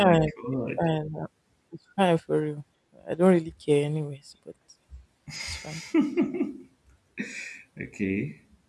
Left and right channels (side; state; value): both; identical; correlation 1.00